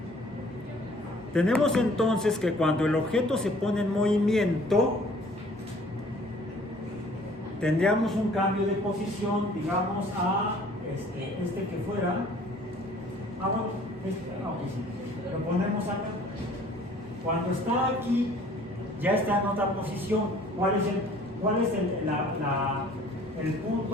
Tenemos entonces que cuando el objeto se pone en movimiento, tendríamos un cambio de posición, digamos, a este que fuera. Bueno, sí. Lo ponemos acá. Cuando está aquí, ya está en otra posición. ¿Cuál es el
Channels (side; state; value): both; normal; correlation 0.54